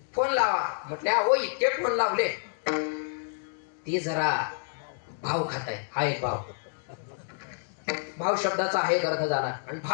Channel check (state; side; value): silent; right; digital silence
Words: फोन लावा म्हटले. हो इतके फोन लावले. ती जरा भाव खाताय. हा एक भाव. भाव शब्दाचा हा एक अर्थ झाला. आणि